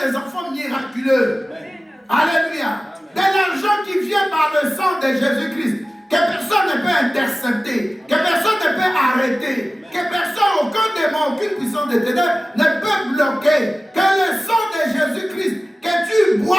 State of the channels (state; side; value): normal; both; correlation 0.96